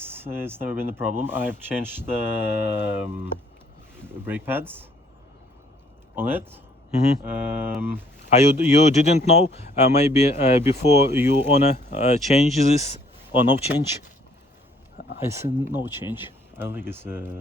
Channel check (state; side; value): normal; both; correlation 0.62